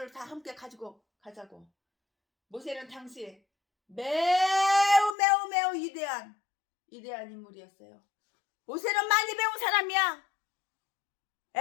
다 함께 가지고 가자고. 모세는 당시 매우 위대한 인물이었어요. 모세는 많이 배운 사람이야.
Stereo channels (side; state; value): right; drops out; at 5.2 s